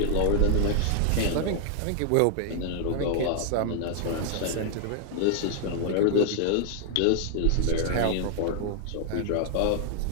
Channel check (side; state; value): both; different; correlation 0.00